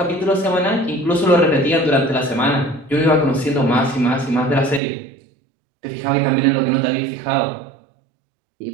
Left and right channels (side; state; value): left; drops out; at 4.8 s